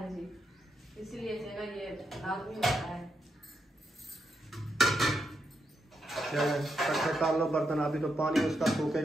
जी, इसलिए जो है ना ये लाजमी होता है। चले इकट्ठे कर लो बर्तन, अभी तो पानी उसका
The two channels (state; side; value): normal; both; correlation 0.82